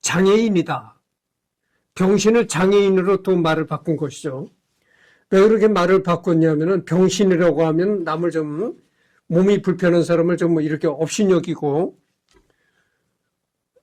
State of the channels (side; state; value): both; identical; correlation 1.00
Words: 장애인이다. 병신을 장애인으로 또 말을 바꾼 것이죠. 왜 그렇게 말을 바꿨냐면은 병신이라고 하면 남을 좀 몸이 불편한 사람을 좀 이렇게 업신여기고